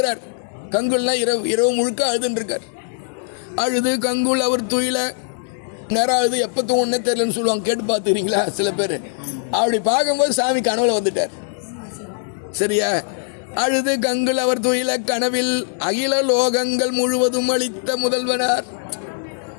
கங்குல்லாம் இரவு முழுக்க அழுதுன்ட்ருக்கார். அழுது கங்குல் அவர் துயில நேரம் அழுது எப்போ தூங்கன்னே தெரியலன்னு சொல்லுவாங்க. கேட்டு பார்த்துக்கிறீங்களா சில பேர்? அப்படி பார்க்கும்போது சாமி கனவுல வந்துட்டார். சரியா? அழுது கங்குல் அவர் துயில கனவில் அகில லோகங்கள் முழுவதும் அளித்த முதல்வனார்,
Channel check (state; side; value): silent; right; digital silence